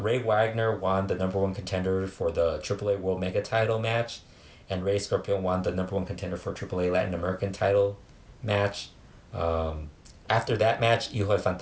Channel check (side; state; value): both; identical; correlation 1.00